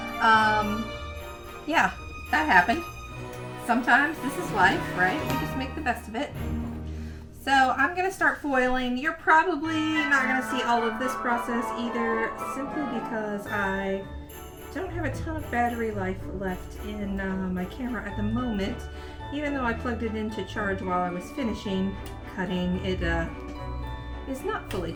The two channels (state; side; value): identical; both; correlation 1.00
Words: yeah, that happened. Sometimes this is life, right? We just make the best of it. So I'm going to start foiling. You're probably not going to see all of this process either, simply because I don't have a ton of battery life left in my camera at the moment. Even though I plugged it in to charge while I was finishing cutting, it is not fully